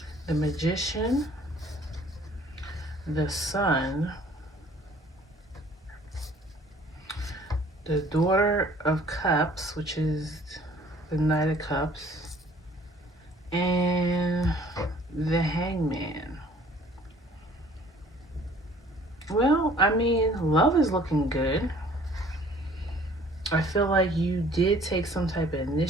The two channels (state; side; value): normal; both; correlation 0.55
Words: The Magician, the Sun, the Daughter of Cups, which is the Knight of Cups, and mean, love is looking good. I feel like you did take some type of